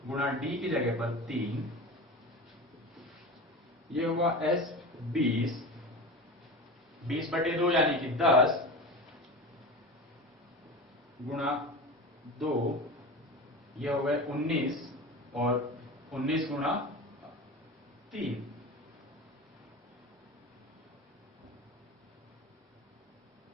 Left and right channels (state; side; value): normal; both; correlation 0.30